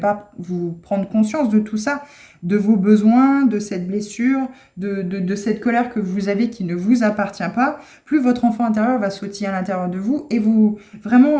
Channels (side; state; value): both; identical; correlation 1.00